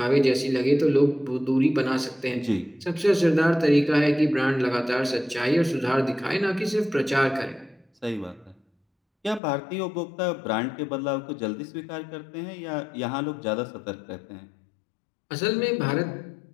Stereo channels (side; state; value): right; drops out; at 9.4 s